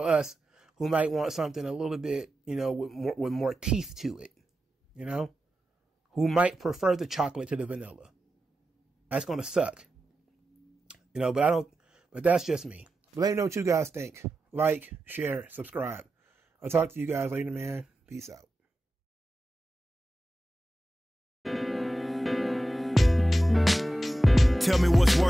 us who might want something a little bit, you know, with more teeth to it, you know, who might prefer the chocolate to the vanilla. That's going to suck, you know, but that's just me. But let me know what you guys think. Like, share, subscribe. I'll talk to you guys later, man. Peace out. Tell me what's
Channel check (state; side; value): normal; both; correlation 0.91